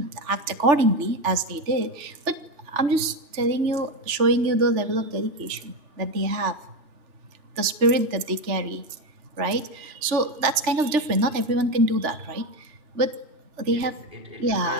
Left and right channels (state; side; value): late; left; 3.4 ms